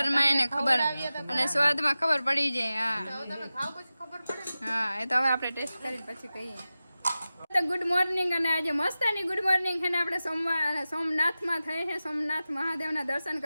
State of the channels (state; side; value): inverted; both; correlation -0.95